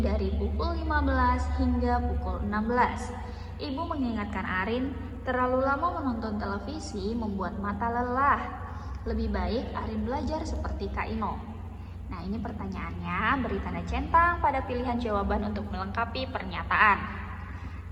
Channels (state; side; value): identical; both; correlation 1.00